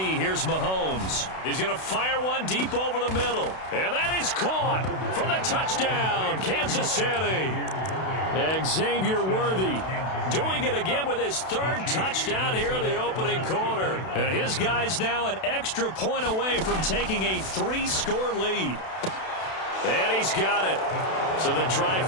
here's Mahomes. He's going to fire one deep over the middle. And that is caught for the touchdown, Kansas City. Xavier Worthy doing it again with his third touchdown here in the opening quarter. And his guys now an extra point away from taking a 3-score lead. And he's got it. So the try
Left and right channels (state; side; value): late; right; 32 ms